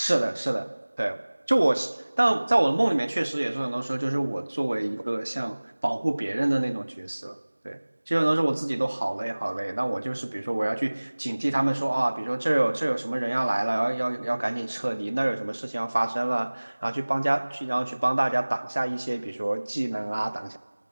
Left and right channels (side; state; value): both; inverted; correlation -1.00